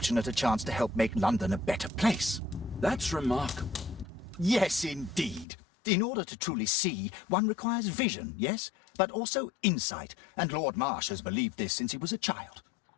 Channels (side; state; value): right; drops out; at 5.5 s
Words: a chance to help make London a better place. That's remarkable. Yes, indeed. In order to truly see, one requires vision, yes, but also insight, and Lord Marsh has believed this since he was a child.